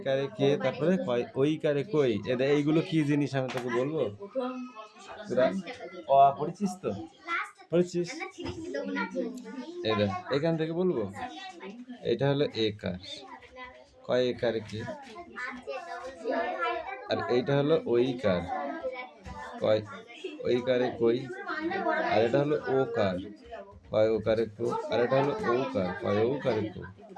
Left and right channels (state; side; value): identical; both; correlation 1.00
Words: কে, তারপরে ওইকারে কই, এইগুলো কি জিনিস আমি তোকে বলবো? পড়েছিস তো? পড়েছিস? এখান থেকে বলবো। এটা হলো একার, কয় একারে কি? আর এইটা হলো ওইকার, কয় ওইকারে কই? আর এটা হলো ওকার, কয় ওকারে কো? আর এটা হলো ওকার, কয় ওকারে কো?